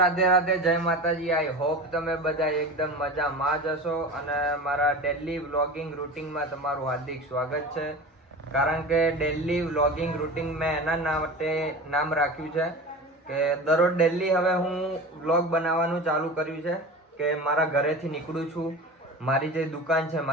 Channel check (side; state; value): both; normal; correlation 0.32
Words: રાધે, જય માતાજી. આઈ હોપ તમે બધા એકદમ મજામાં જ હશો અને મારા ડેલી વ્લોગિંગ રૂટિનમાં તમારું હાર્દિક સ્વાગત છે. કારણ કે ડેલી વ્લોગિંગ રૂટિન મેં એના માટે નામ રાખ્યું છે કે દરરોજ ડેલી હવે હું વ્લોગ બનાવવાનું ચાલુ કર્યું છે કે મારા ઘરેથી નીકળું છું, મારી જે દુકાન છે